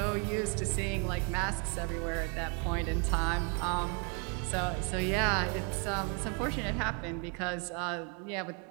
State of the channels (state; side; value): quieter; left; 36.4 dB